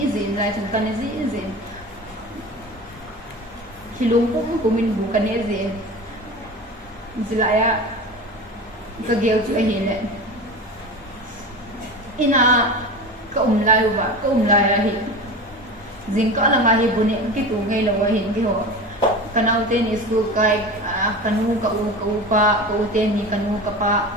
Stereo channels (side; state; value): both; normal; correlation 0.31